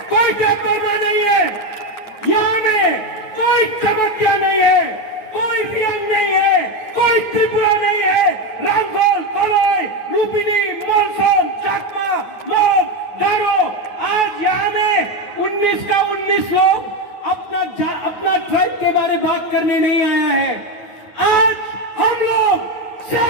कोई तपरमा नहीं है, यहां में कोई चमत्या नहीं है, कोई रियंग नहीं है, कोई त्रिपुरा नहीं है। रामगढ़, कलाई, रूपिनी, मलसोम, चाकमा, मोग, गारो, आज यहां में 19 का 19 लोग अपना ट्राइब के बारे में बात करने नहीं आया है। आज हम लोग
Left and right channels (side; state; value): right; late; 9.3 ms